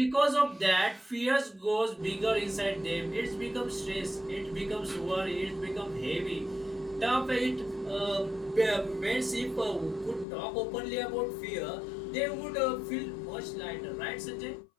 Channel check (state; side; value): drops out; right; at 10.2 s